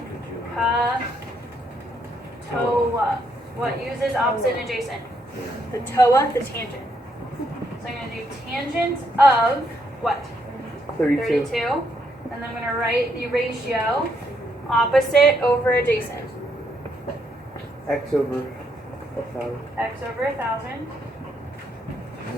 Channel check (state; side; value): normal; both; correlation 0.75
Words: ka, toa. What uses opposite and adjacent? The toa, the tangent. So I'm going to do tangent of what? 32. 32. And then I'm going to write the ratio opposite over adjacent. X over 1,000. X over 1,000.